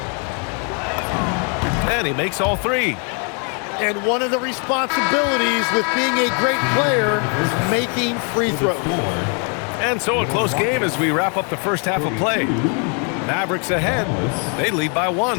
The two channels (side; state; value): right; quieter; 39.1 dB